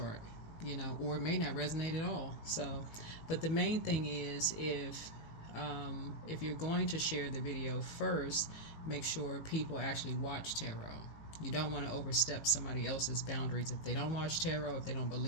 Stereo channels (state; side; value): late; right; 19 ms